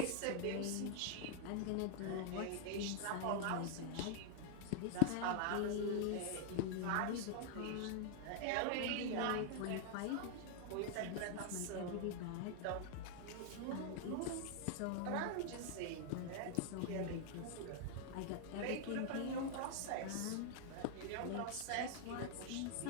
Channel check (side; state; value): both; different; correlation 0.00